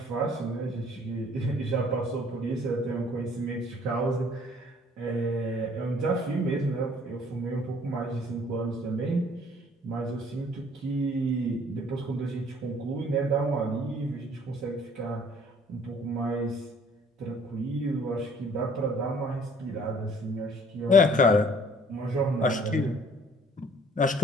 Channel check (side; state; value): both; normal; correlation 0.57